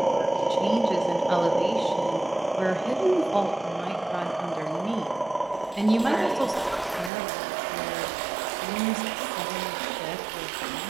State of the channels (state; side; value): drops out; left; at 7.1 s